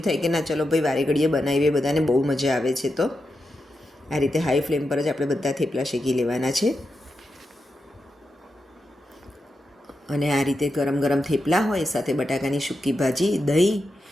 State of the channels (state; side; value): normal; both; correlation 0.88